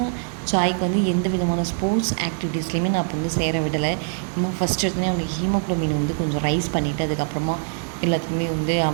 ஜாய்க்கு வந்து எந்த விதமான ஸ்போர்ட்ஸ் ஆக்டிவிட்டீஸ்லையுமே நான் இப்போ வந்து சேர விடலை. இன்னும் ஃபஸ்ட் எடுத்தோடனே அவனுக்கு ஹீமோக்ளோபின் வந்து கொஞ்சம் ரைஸ் பண்ணிவிட்டு அதுக்கப்புறமா எல்லாத்துக்குமே வந்து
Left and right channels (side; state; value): left; silent; digital silence